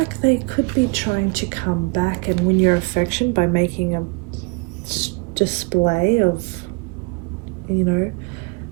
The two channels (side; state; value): left; quieter; 29.3 dB